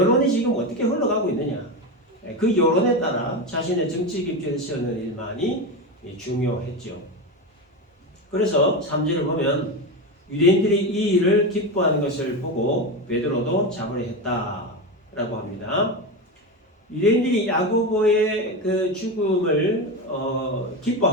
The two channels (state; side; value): normal; both; correlation 0.18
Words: 지금 어떻게 흘러가고 있느냐, 그 여론에 따라 자신의 정치 입지를 세우는 일만이 중요했죠. 그래서 3절을 보면 유대인들이 이 일을 기뻐하는 것을 보고 베드로도 잡으려 했다라고 합니다. 유대인들이 야고보의 그 죽음을